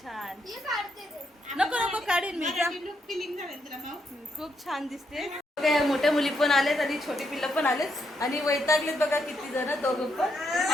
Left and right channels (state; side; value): normal; both; correlation 0.78